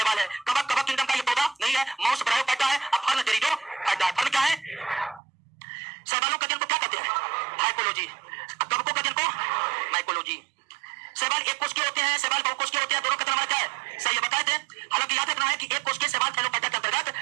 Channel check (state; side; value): drops out; left; at 5.2 s